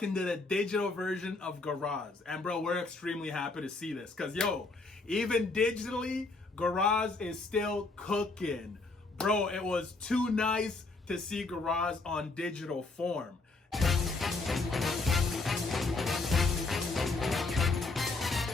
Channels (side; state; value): right; quieter; 3.5 dB